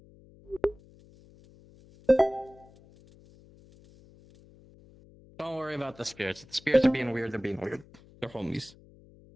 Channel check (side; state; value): left; noise; hum, 24 dB below the sound